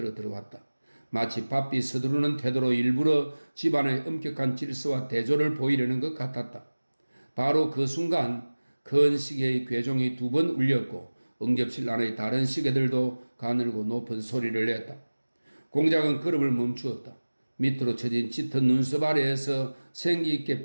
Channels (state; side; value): inverted; both; correlation -1.00